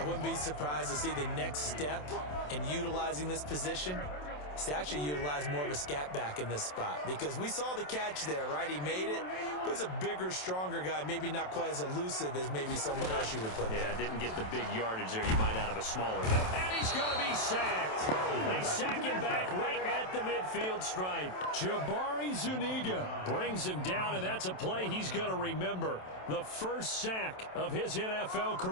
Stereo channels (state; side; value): late; right; 27 ms